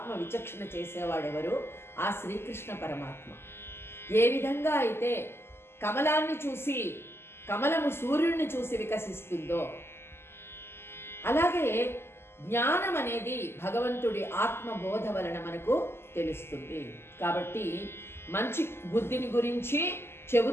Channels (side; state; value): right; late; 0.12 ms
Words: విచక్షణ చేసేవాడు ఎవరు? ఆ శ్రీకృష్ణ పరమాత్మ. ఏ విధంగా అయితే కమలాన్ని చూసి, కమలము సూర్యుడిని చూసి వికసిస్తుందో, అలాగే జ్ఞానం అనేది భగవంతుడి ఆత్మబోధ వలన మనకు తెలుస్తుంది. కాబట్టి మంచి బుద్ధిని గురించి